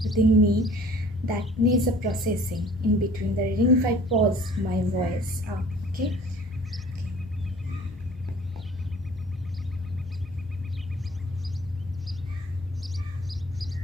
within me that needs a processing in between the reading if I pause my voice. Okay.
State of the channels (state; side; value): normal; both; correlation 0.50